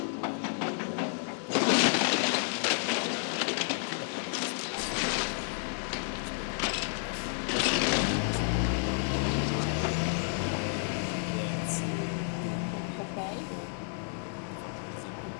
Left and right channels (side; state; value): right; silent; 56 dB below the other